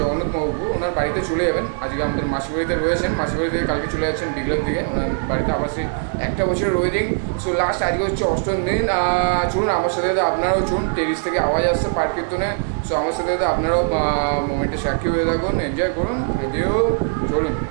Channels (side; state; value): left; silent; 65 dB below the other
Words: জগন্নাথ মহাপ্রভু ওনার বাড়িতে চলে যাবেন। আজকে আমাদের মাসির বাড়িতে রয়েছেন, মাসির বাড়ি থেকে কালকে চলে যাচ্ছেন বিকেলের দিকে ওনার বাড়িতে। আবার সেই একটা বছরের ওয়েডিং। সো লাস্ট আজকে হচ্ছে অষ্টম দিন। চলুন আমার সাথে আপনারাও চলুন, টেরিস থেকে আওয়াজ আসছে পাঠ কীর্তনে। সো আমার সাথে আপনারাও মোমেন্টে সাক্ষী হয়ে থাকুন, এনজয় করুন। রেডিও চলুন,